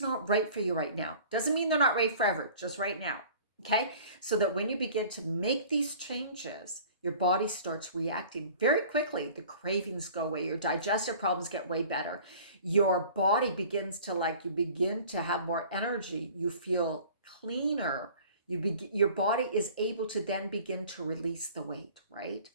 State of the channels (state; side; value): inverted; both; correlation -0.47